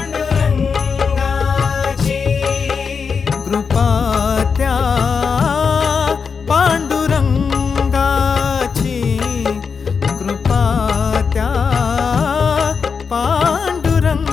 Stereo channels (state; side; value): quieter; right; 5.7 dB